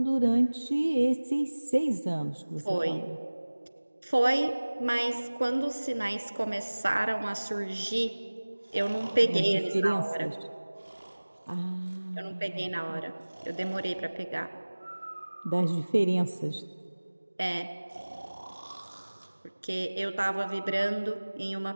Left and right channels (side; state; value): both; inverted; correlation -1.00